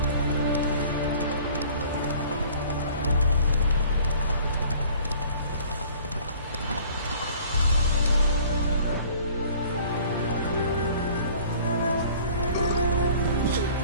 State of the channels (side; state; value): both; inverted; correlation -0.50